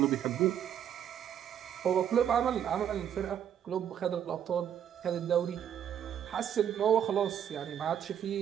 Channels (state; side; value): quieter; left; 9.5 dB